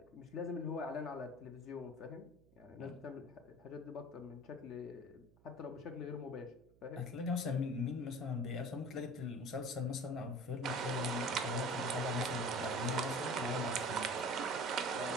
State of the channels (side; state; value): right; noise; hum, 28 dB below the sound